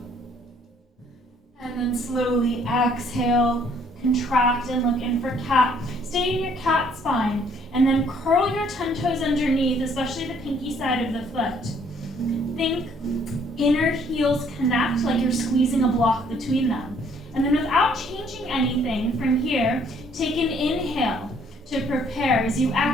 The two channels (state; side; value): normal; both; correlation 0.63